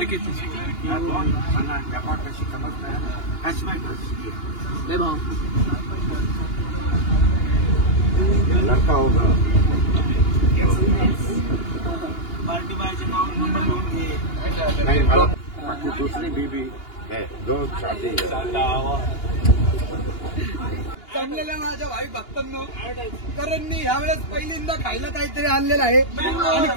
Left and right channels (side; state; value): right; late; 2.8 ms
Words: व्यापार कशी समजताय, हॅशबॅक कशी भाऊ लड़का होगा. पार्टी बायचे नाव नंबर लिहून घे. नहीं मला बाकी दूसरी बीबी है, दो शादी है. जमलेल्या माझ्या भाई भक्तांनो, करणनी यावेळेस पहिल्यांदा खायला काहीतरी आणलेलं आहे, आणि